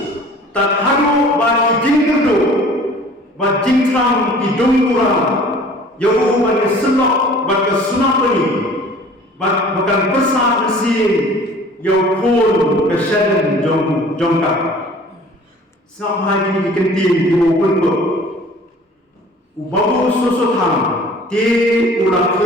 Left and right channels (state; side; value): normal; both; correlation 0.48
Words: tak haru bagi jingkerdo bat jingtram di dongura yau bagi senok bagi sunapani bat bukan besar mesin yau pun kesadaran jongka sampai ini kenting di open book ubabu susutham ti ulah